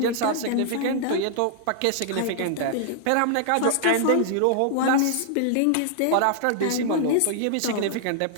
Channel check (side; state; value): both; different; correlation -0.01